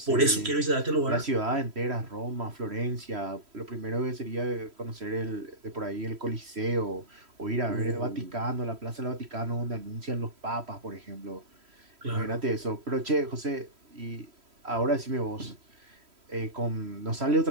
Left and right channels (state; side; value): late; left; 3.1 ms